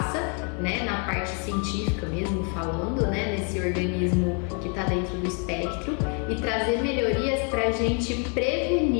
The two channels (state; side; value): quieter; right; 38.6 dB